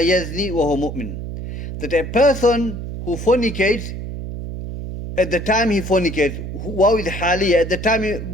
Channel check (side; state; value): right; noise; hum, 7 dB below the sound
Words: وهو مؤمن, that a person who fornicates at the time he fornicates, واو الحالية, at the time he